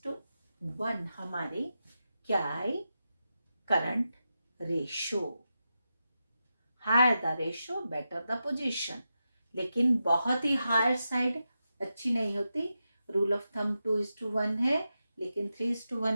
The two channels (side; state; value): both; inverted; correlation -0.89